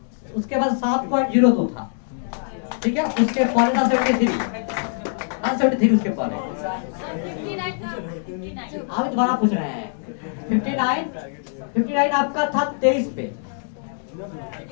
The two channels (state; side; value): silent; right; 63 dB below the other